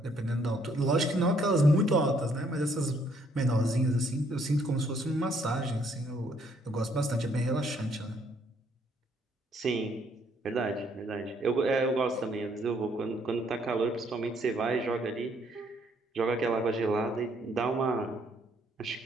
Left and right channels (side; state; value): both; normal; correlation 0.67